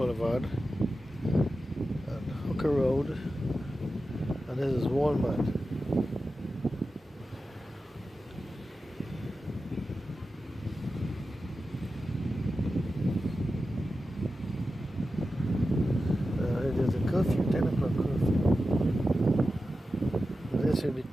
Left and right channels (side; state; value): both; normal; correlation 0.92